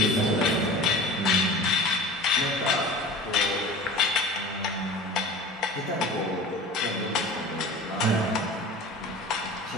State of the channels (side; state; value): both; normal; correlation 0.38